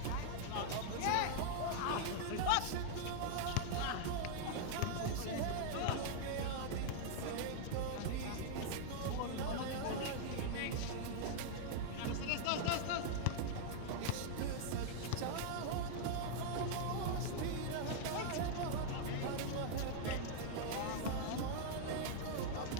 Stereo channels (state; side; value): different; both; correlation -0.01